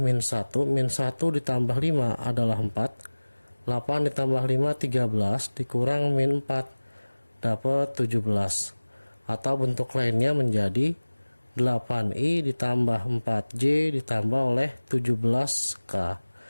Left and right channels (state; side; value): inverted; both; correlation -1.00